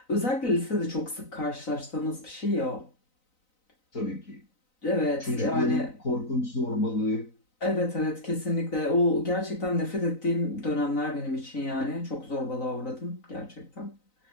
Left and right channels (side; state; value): right; late; 3.9 ms